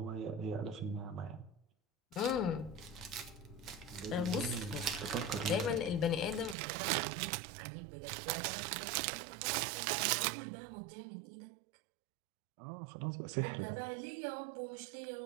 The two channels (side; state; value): left; drops out; at 6.6 s